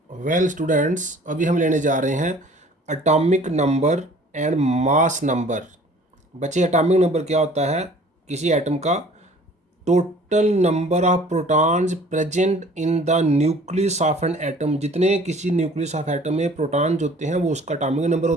Well students, अभी हम लेने जा रहे हैं atomic number and mass number. बच्चे, एटॉमिक नंबर क्या होता है? किसी एटम का total number of protons present in the nucleus of an atom. जितने किसी न्यूक्लियस ऑफ एटम में प्रोटॉन्स होते हैं वो उसका एटॉमिक नंबर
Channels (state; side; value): normal; both; correlation 0.51